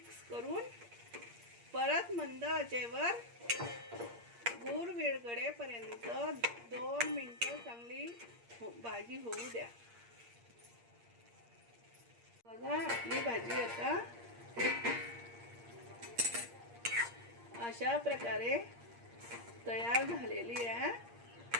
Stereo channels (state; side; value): late; left; 8.6 ms